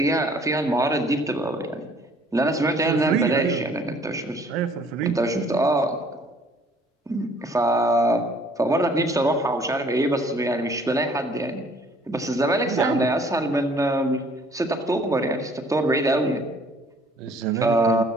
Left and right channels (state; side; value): normal; both; correlation 0.58